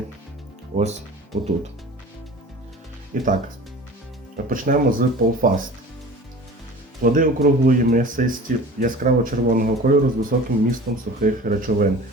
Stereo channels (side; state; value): both; normal; correlation 0.40